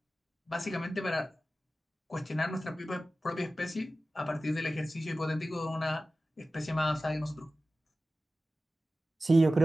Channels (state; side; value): normal; both; correlation 0.95